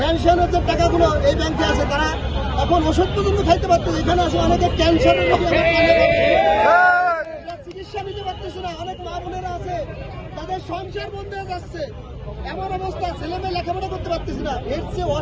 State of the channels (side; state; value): both; identical; correlation 1.00